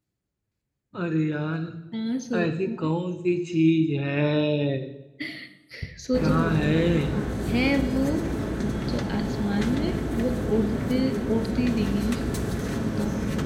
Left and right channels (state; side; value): identical; both; correlation 1.00